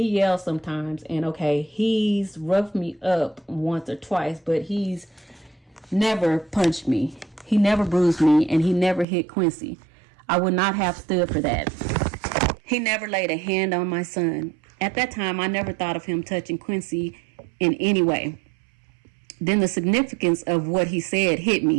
yells sometimes, and okay, he's roughed me up once or twice, but he's never punched me. He never bruised me, and he never hit Quincy. I would not have stood for that. He never laid a hand on my son. At that time, I never thought of him touching Quincy in any way. Then the significance of what he said hit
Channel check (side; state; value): left; drops out; at 9.1 s